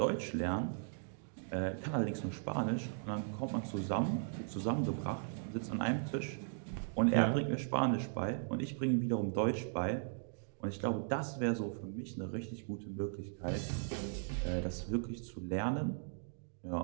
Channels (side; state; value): left; silent; digital silence